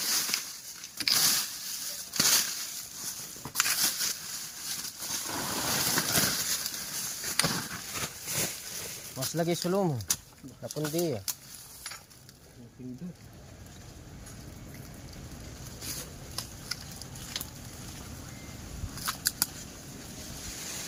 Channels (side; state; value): both; identical; correlation 1.00